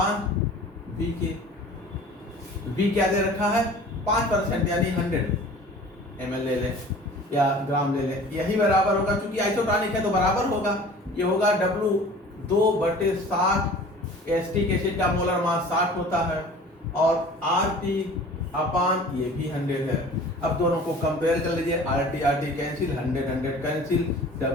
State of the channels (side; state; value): both; normal; correlation 0.44